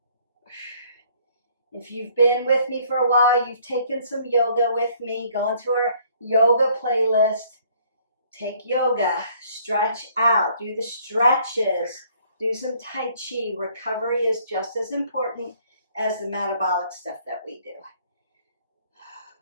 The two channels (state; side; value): inverted; both; correlation -0.61